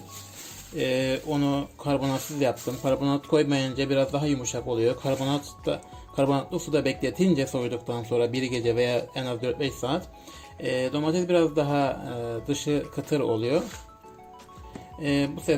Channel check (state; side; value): identical; both; correlation 1.00